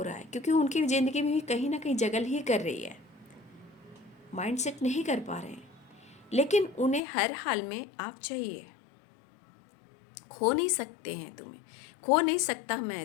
रहा है, क्योंकि उनकी ज़िंदगी में भी कहीं ना कहीं जगल ही कर रही है, माइंडसेट नहीं कर पा रहे हैं, लेकिन उन्हें हर हाल में आप चाहिए। खो नहीं सकते हैं तुम्हें, खो नहीं सकता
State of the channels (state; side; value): drops out; right; at 7.0 s